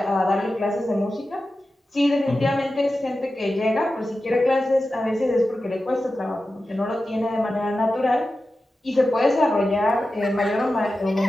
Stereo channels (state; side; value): normal; both; correlation 0.93